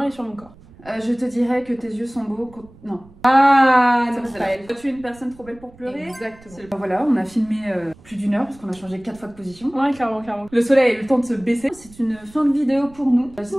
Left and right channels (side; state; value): right; noise; rumble, 24 dB below the sound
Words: est sur mon corps. Je te dirais que tes yeux sont beaux. Non. Ah, Ça non, va, c'est pas elle. Tu es une personne trop belle pour pleurer. Exactement. Voilà, on a filmé plus d'1 heure parce qu'on a changé 4 fois de position. Ouais, clairement, clairement. Le soleil a eu le temps de se baisser. C'est une fin de vidéo pour nous.